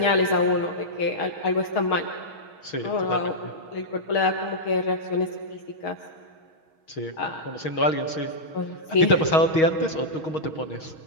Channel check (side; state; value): right; late; 6.4 ms